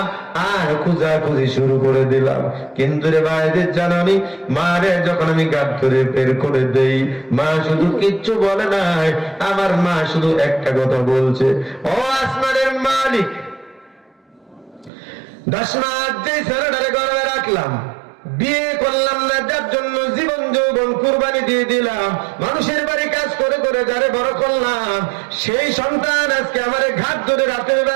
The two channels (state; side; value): drops out; left; at 14.9 s